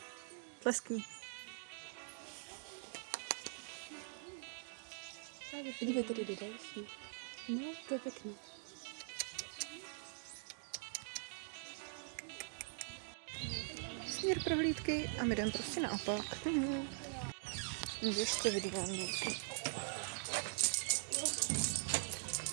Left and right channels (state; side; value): silent; left; digital silence